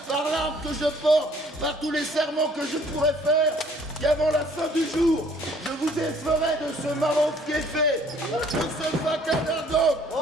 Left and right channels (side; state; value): both; normal; correlation 0.59